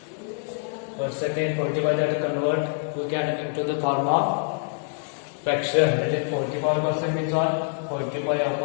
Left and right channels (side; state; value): right; silent; 61 dB below the other